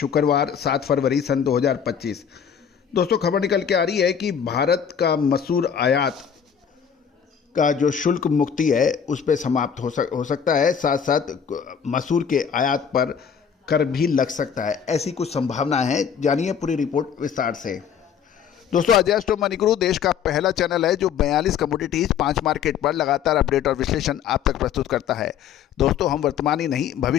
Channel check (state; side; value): quieter; right; 7.8 dB